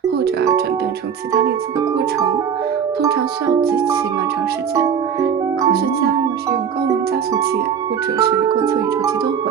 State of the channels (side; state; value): left; quieter; 7.6 dB